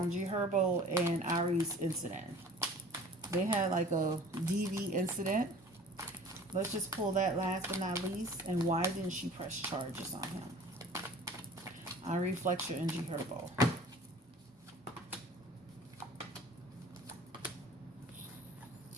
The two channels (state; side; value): normal; both; correlation 0.46